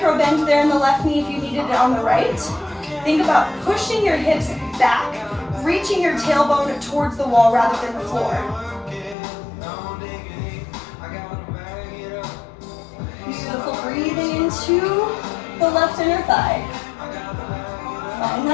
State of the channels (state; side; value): drops out; right; at 9.2 s